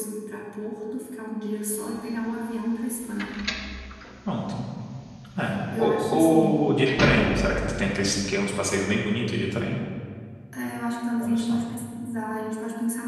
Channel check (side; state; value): both; identical; correlation 1.00